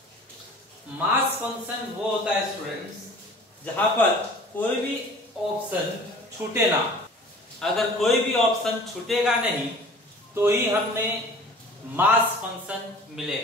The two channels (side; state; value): both; normal; correlation 0.45